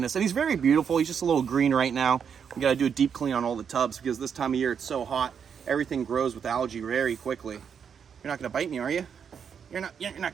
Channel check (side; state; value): left; quieter; 7.2 dB